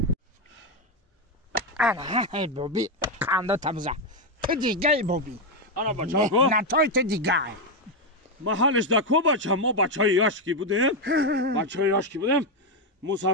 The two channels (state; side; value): normal; both; correlation 0.05